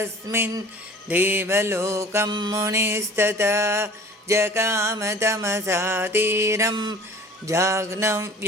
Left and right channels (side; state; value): both; normal; correlation 0.46